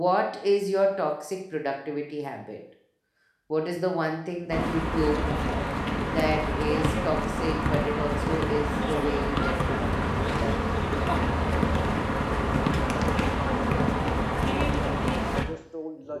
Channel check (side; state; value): both; identical; correlation 1.00